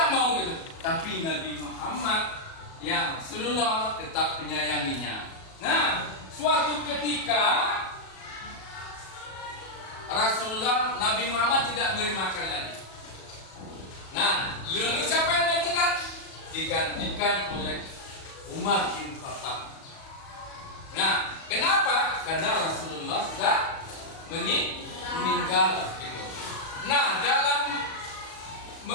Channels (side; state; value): right; late; 37 ms